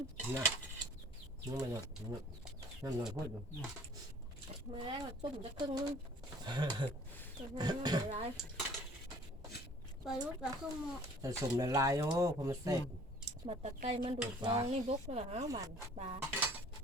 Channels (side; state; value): both; normal; correlation 0.52